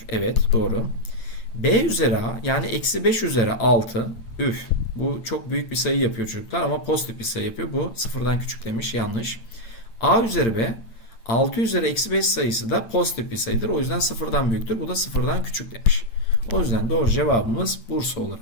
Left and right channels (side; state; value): right; late; 8.8 ms